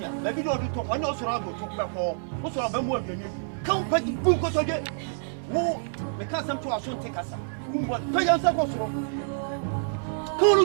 ba bi do to ko na so ra go to ko wo so ba mo aduani kan pa di bu ko so de wo me ka sam to aso te kasa kumbo to ya sa ko so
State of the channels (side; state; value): left; silent; 60 dB below the other